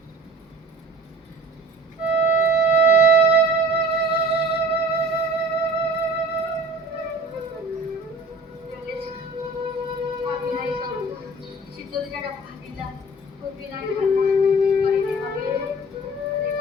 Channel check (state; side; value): normal; both; correlation 0.44